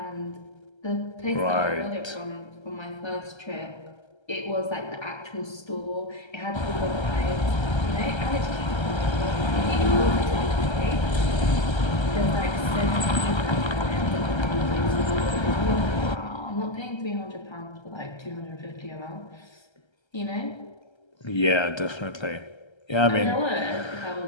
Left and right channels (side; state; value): right; late; 1.3 ms